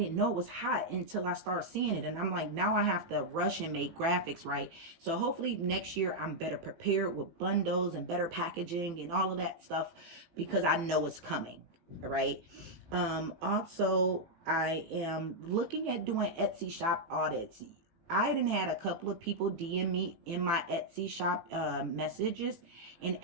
know it was hot until I started seeing it. And I'm like, now I have to rush and make graphics, right? So hopefully next year I'm better prepared with bundles and better packaging and all of that stuff, because I know it's coming, right? Also, I am looking at doing Etsy shop audits. I done had a couple of people DM me in my Etsy shop messages and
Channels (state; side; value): late; left; 18 ms